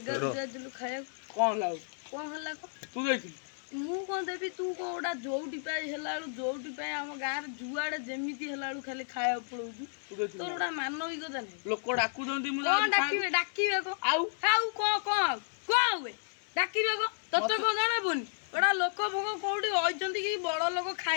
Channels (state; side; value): silent; right; digital silence